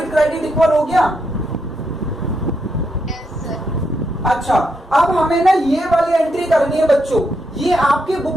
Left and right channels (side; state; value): both; normal; correlation 0.81